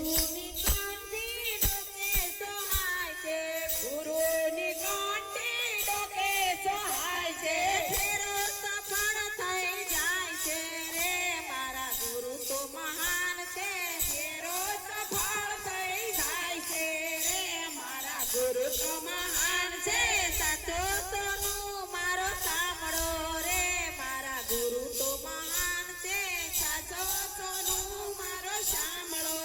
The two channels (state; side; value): identical; both; correlation 1.00